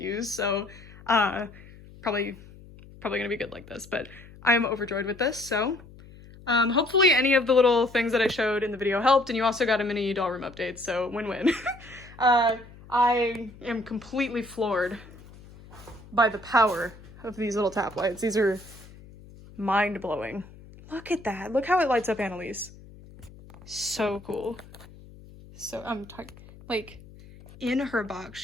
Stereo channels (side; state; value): left; noise; hum, 20 dB below the sound